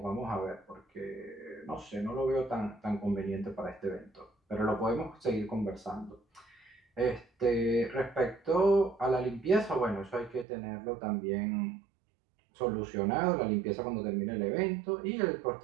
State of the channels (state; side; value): drops out; left; at 10.5 s